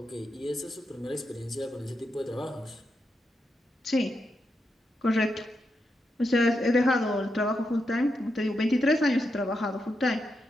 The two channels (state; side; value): normal; both; correlation 0.84